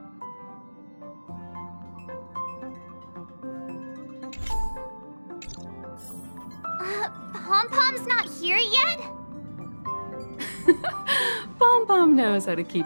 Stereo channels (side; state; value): both; inverted; correlation -1.00